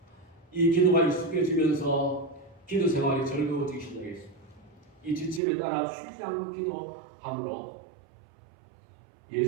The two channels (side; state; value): left; drops out; at 5.4 s